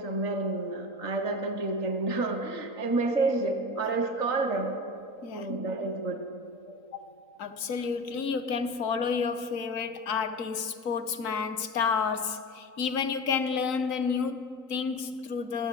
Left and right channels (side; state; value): right; late; 3.9 ms